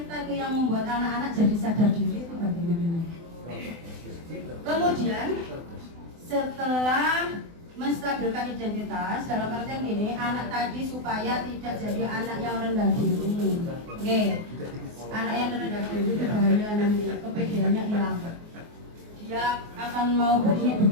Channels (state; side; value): late; left; 24 ms